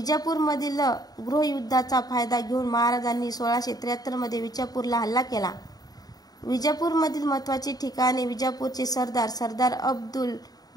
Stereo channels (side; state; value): right; late; 0.18 ms